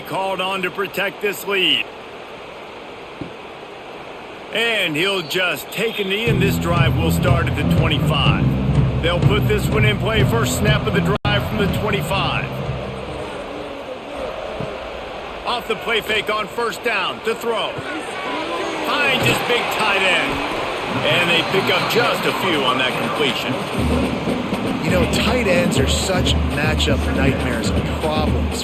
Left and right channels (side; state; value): both; identical; correlation 1.00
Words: called on to protect this lead. And he'll just take a knee, and this drive will start at the 25. They'll put this one in play. First snap of the drive from the 25. Off the play fake on 1st down to throw. Finds his big tight end. And they pick up just a few on that completion. You know, tight ends are such matchup nightmares and problems